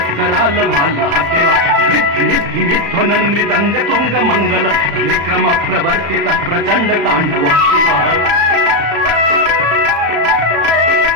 मिद्धिमिद्धिमिध्वनन् मृदंग तुंग मंगल निक्रम प्रवर्तितः प्रचंड तांडव शिवः।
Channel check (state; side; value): late; left; 35 ms